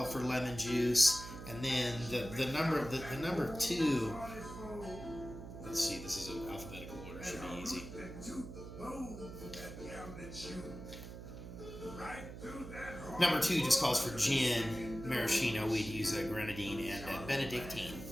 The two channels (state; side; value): noise; right; hum, 11 dB below the sound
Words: for lemon juice, and then the number 2. Let's see, this is an alphabetical order, should be easy. Number 2 just calls for gin, maraschino. We'd use a grenadine and Benedictine,